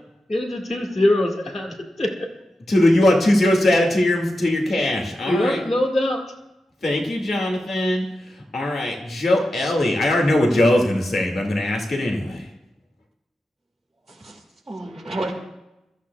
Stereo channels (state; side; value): normal; both; correlation 0.90